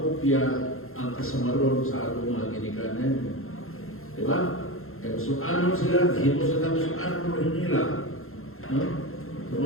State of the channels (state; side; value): late; right; 0.61 ms